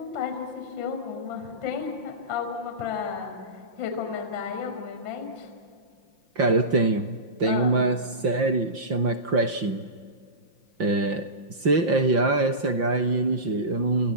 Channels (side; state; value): left; late; 5.7 ms